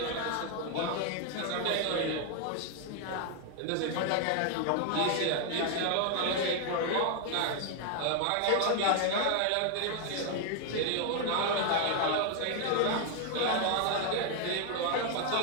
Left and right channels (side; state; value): both; different; correlation 0.00